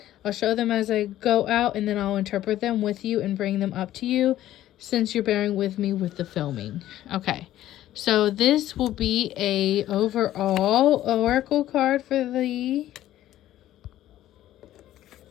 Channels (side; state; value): right; quieter; 13.4 dB